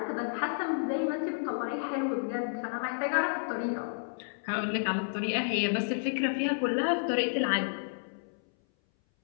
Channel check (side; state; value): right; silent; 57 dB below the other